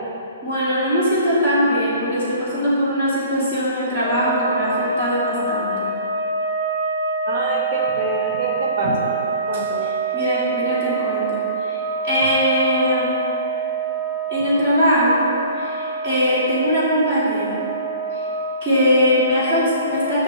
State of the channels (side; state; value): both; inverted; correlation -0.46